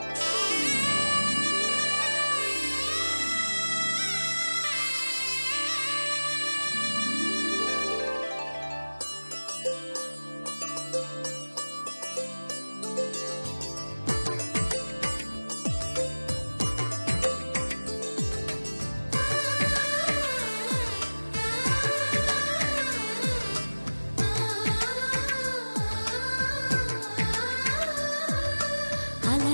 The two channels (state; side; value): inverted; both; correlation -1.00